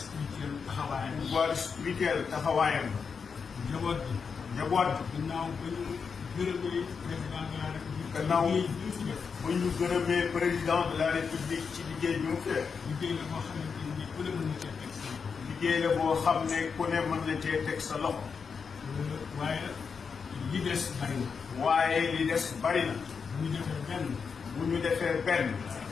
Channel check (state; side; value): quieter; right; 5.8 dB